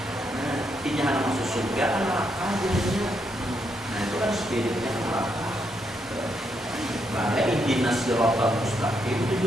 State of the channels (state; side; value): normal; both; correlation 0.78